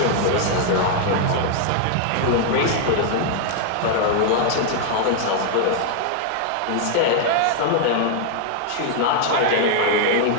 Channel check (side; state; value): both; different; correlation 0.00